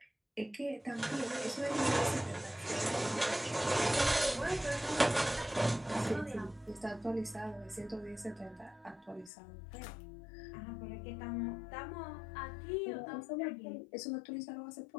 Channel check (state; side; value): drops out; right; at 9.3 s